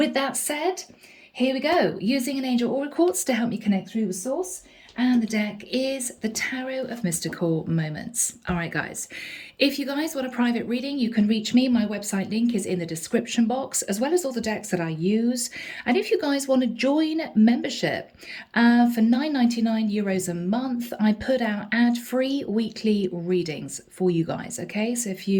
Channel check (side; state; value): both; identical; correlation 1.00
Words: that said, here we go, using an angel aura quartz to help me connect through with source. And the deck is the Tarot of Mystical Moments. All right, guys, if you guys want a private reading, you can reach me. My website link is in the description box, as well as all the decks that I use. And if you guys want to join membership for €9.99 a month, I put out ad-free weekly readings for you guys. Okay, so if